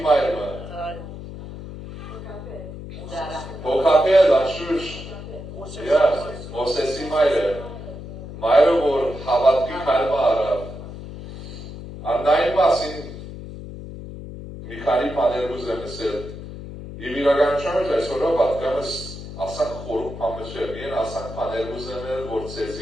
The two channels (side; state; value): left; noise; hum, 11 dB below the sound